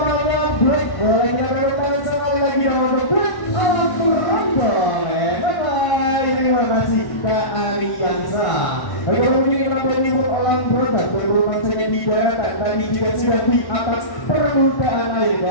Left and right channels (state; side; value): late; right; 1.1 ms